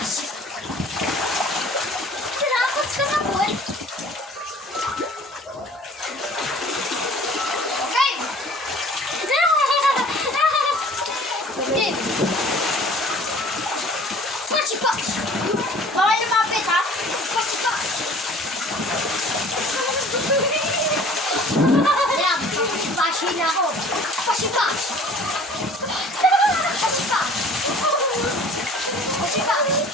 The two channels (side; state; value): both; normal; correlation 0.49